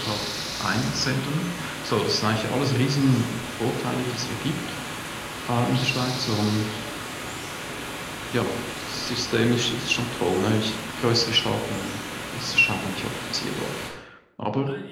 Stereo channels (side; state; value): both; identical; correlation 1.00